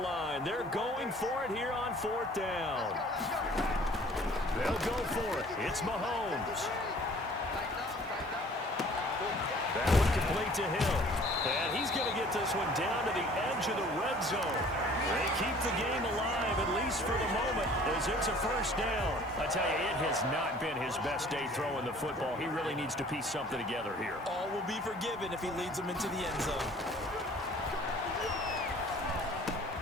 They're going for it here on 4th down. They'll go for it. It's Mahomes. That one complete to Hill. And he's going to get this one down to the edge of the red zone. They keep the game alive, at least for the moment, as it's a 1st down. I tell you, it has not been his best day throwing the football. He really needs to piece something together here. All will be forgiven if he leads them into the end zone.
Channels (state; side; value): normal; both; correlation 0.52